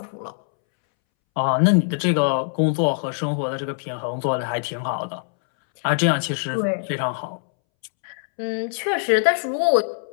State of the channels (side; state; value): right; silent; 64 dB below the other